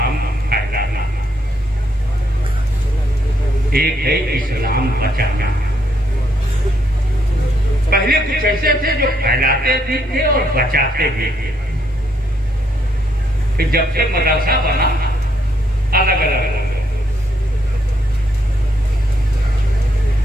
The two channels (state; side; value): normal; both; correlation 0.74